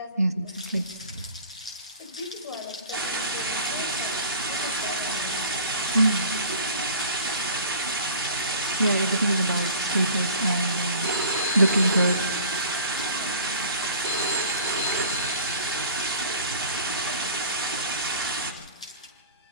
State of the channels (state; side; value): inverted; both; correlation -0.44